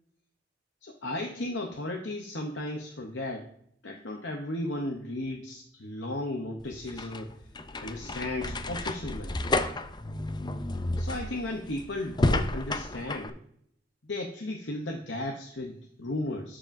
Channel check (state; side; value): normal; both; correlation 0.51